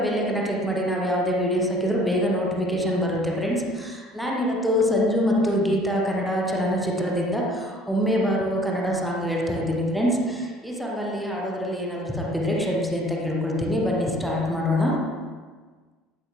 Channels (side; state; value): both; normal; correlation 0.55